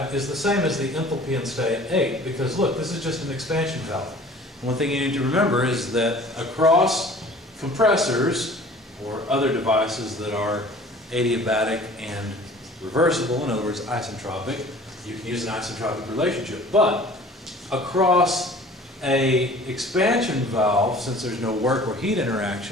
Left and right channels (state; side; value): normal; both; correlation 0.47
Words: is the same as the enthalpy in state 8, because look, this is just an expansion valve. One thing you need to remember is that across compressors or other devices that are adiabatic and reversible, in other words, isentropic, you can use an isentropic relationship. But across a expansion valve, since there's no work or heat